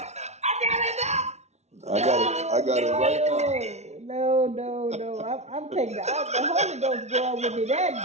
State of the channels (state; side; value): late; left; 0.32 ms